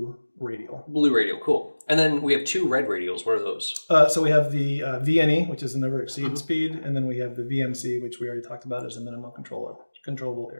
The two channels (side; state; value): both; inverted; correlation -1.00